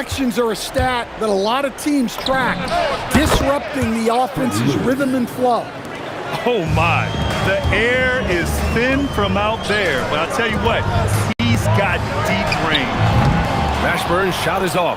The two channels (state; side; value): identical; both; correlation 1.00